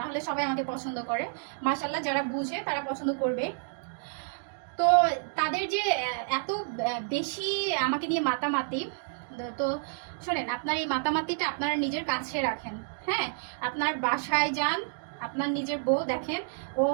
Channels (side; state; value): left; silent; digital silence